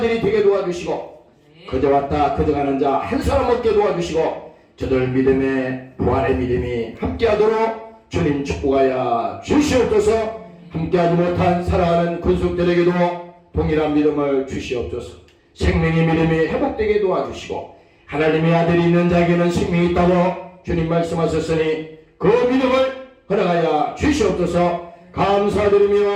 되게 도와주시고 그저 왔다 그저 가는 자 한 사람 없게 도와주시고 저들 믿음의 부활의 믿음이 함께하도록 주님 축복하여 주시옵소서. 함께하지 못한 사랑하는 권속들에게도 동일한 믿음을 주시옵소서. 생명의 믿음이 회복되게 도와주시고 하나님의 아들이 있는 자에게는 생명이 있다고 주님 말씀하셨으니 그 믿음을 허락하여 주시옵소서.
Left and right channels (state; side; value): identical; both; correlation 1.00